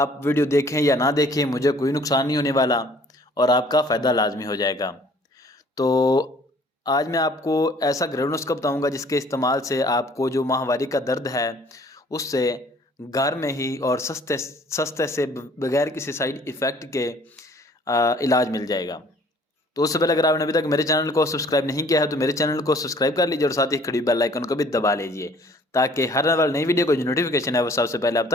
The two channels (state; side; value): normal; both; correlation 0.55